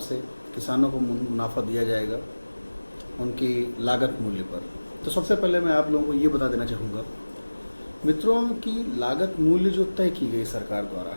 किसानों को मुनाफा दिया जाएगा उनकी लागत मूल्य पर। तो सबसे पहले मैं आप लोगों को ये बता देना चाहूँगा मित्रों की लागत मूल्य जो तय की गई सरकार द्वारा,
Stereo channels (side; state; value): both; inverted; correlation -1.00